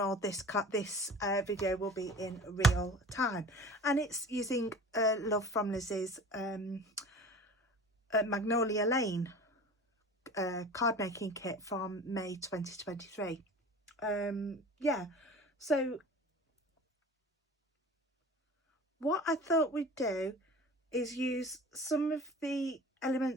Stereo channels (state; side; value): normal; both; correlation 0.38